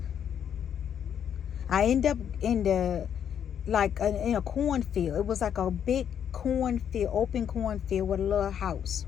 in a cornfield. It was like a big cornfield, open cornfield with a little house.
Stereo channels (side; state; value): right; quieter; 8.8 dB